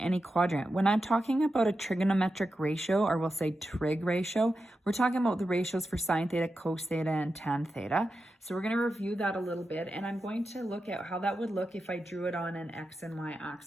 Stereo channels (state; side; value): normal; both; correlation 0.90